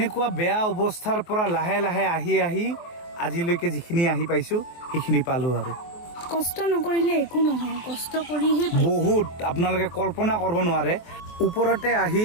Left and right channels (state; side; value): late; right; 23 ms